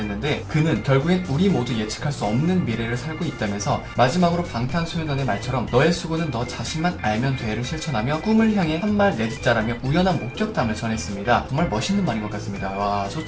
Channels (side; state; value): both; identical; correlation 1.00